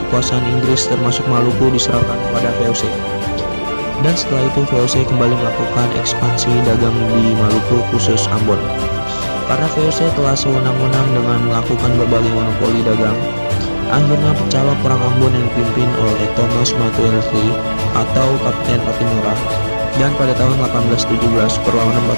kekuasaan Inggris termasuk Maluku diserahkan kepada VOC. Dan setelah itu VOC kembali melakukan ekspansi dagang di Maluku khusus Ambon. Karena VOC telah sewenang-wenang dengan melakukan berbagai monopoli dagang, akhirnya pecahlah Perang Ambon yang dipimpin oleh Thomas Matulesi atau Kapten Pattimura. Dan pada tahun 1817 perlawanan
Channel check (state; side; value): inverted; both; correlation -1.00